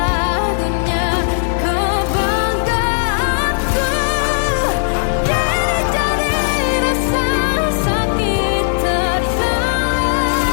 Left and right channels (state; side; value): silent; right; digital silence